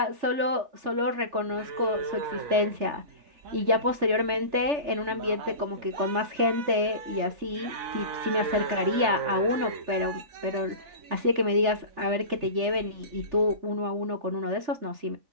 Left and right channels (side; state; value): left; late; 3.3 ms